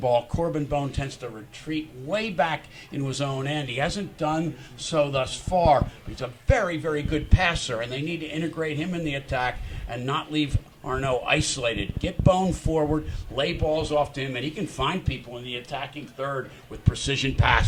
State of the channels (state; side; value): identical; both; correlation 1.00